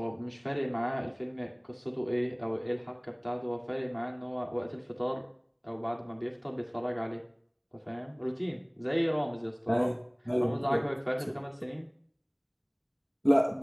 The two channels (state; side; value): identical; both; correlation 1.00